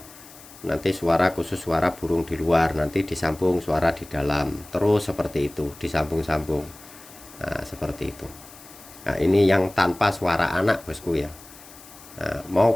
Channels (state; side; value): noise; left; hiss, 20 dB below the sound